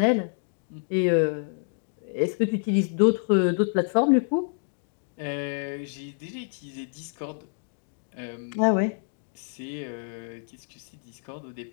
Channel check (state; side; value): silent; right; digital silence